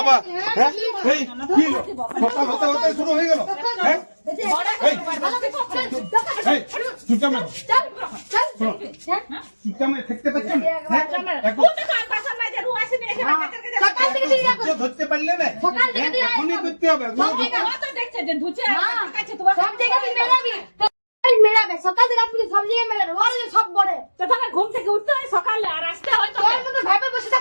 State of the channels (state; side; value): inverted; both; correlation -1.00